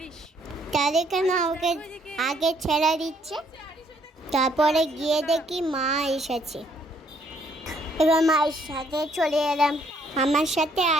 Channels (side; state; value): both; normal; correlation 0.67